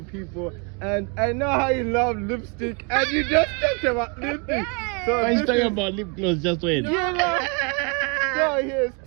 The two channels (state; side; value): quieter; left; 33.4 dB